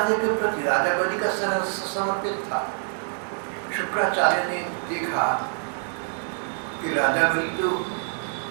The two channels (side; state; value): left; silent; digital silence